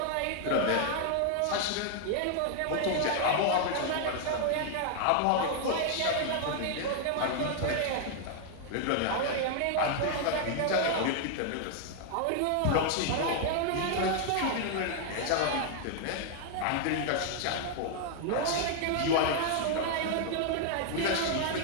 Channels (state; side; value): different; both; correlation 0.00